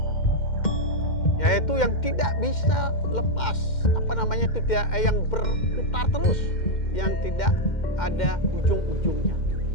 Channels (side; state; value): right; late; 2.1 ms